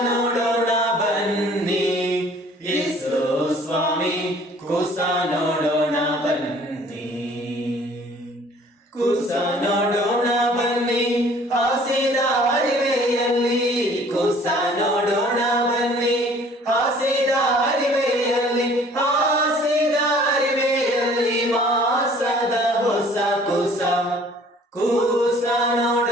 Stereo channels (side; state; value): both; normal; correlation 0.54